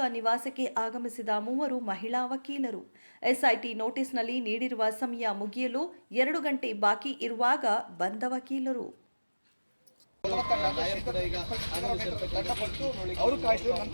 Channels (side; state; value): both; inverted; correlation -1.00